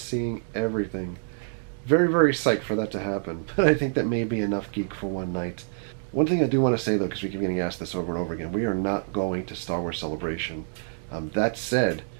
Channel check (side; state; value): left; silent; digital silence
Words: everything. Very, very psyched for that to happen. But I think that may be enough geek for one night. One thing I do want to say, though, because we keep getting asked this over and over again, we are not going to Star Wars Celebration. That said,